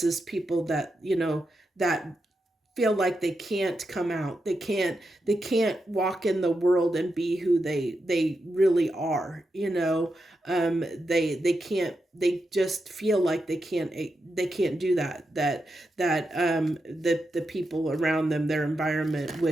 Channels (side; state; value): both; normal; correlation 0.87